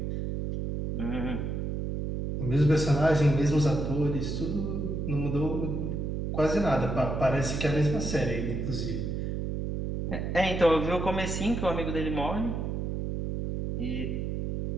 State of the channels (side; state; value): right; noise; hum, 2 dB below the sound